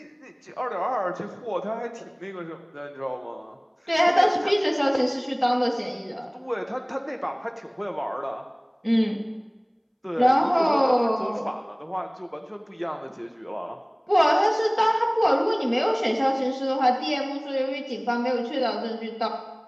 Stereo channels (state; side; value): identical; both; correlation 1.00